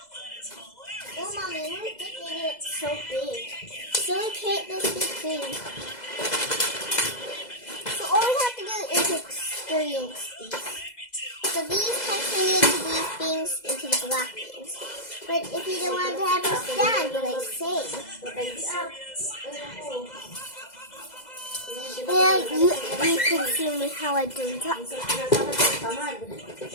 Oh, mommy, we're making it so big. So we create this big thing. So all we have to do is experience these. So these can turn into these things, into the black things. But if you don't want to have a stand, like say, yeah, you can see me how I do that.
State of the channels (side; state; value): right; late; 2.0 ms